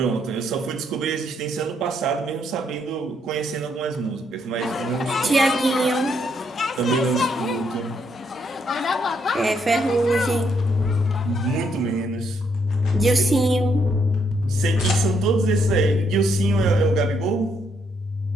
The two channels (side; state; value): both; normal; correlation 0.74